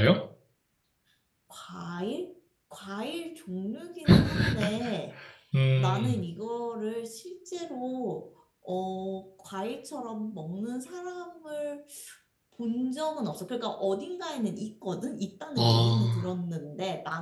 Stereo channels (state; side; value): identical; both; correlation 1.00